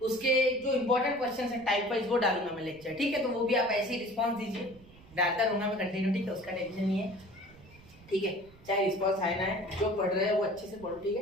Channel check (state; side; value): noise; right; rumble, 23 dB below the sound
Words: उसके जो इंपॉर्टेंट क्वेश्चंस है टाइप वाइज वो डालूंगा मैं लेक्चर। ठीक है, तो वो भी आप ऐसे ही रिस्पांस दीजिए, डालता रहूंगा मैं कंटिन्यू। ठीक है, उसका टेंशन नहीं है। ठीक है, चाहे रिस्पांस आए ना है, जो पढ़ रहे हैं वो अच्छे से पढ़ो। ठीक